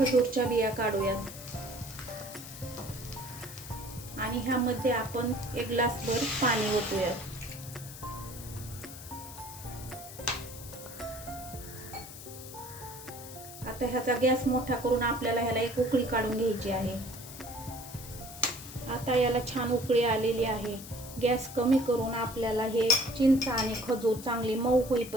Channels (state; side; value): noise; left; hiss, 14 dB below the sound